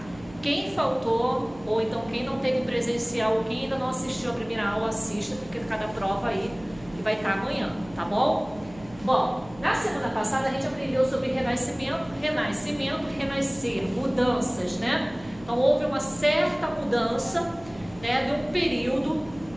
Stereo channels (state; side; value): noise; right; hum, 20 dB below the sound